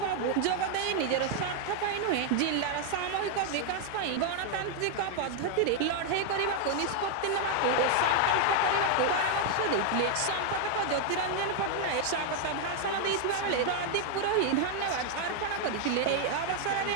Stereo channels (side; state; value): both; different; correlation 0.00